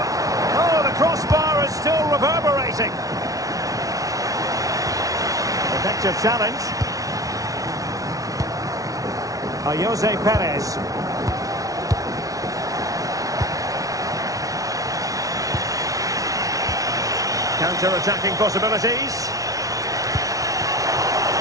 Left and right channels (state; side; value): late; left; 0.17 ms